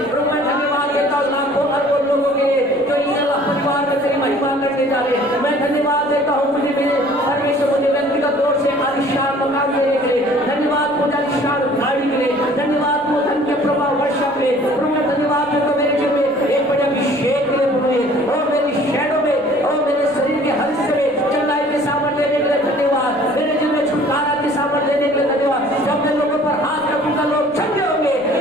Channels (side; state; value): left; noise; rumble, 29 dB below the sound